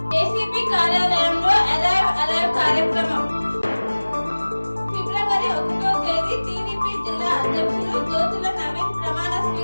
ఏసీపీ కార్యాలయంలో అలైవ్ కార్యక్రమం. ఫిబ్రవరి 1వ తేదీ టీడీపీ జిల్లా అధ్యక్షులు జ్యోతుల నవీన్ ప్రమాణ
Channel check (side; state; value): both; inverted; correlation -1.00